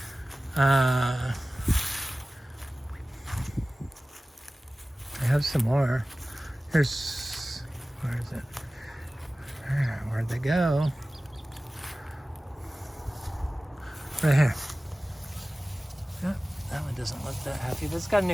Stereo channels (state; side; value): normal; both; correlation 0.97